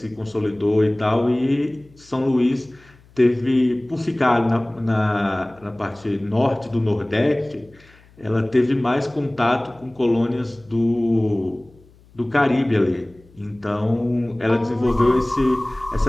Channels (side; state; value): left; noise; hum, 28 dB below the sound